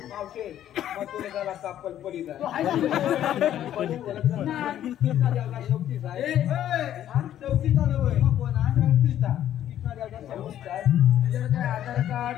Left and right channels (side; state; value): right; quieter; 11.4 dB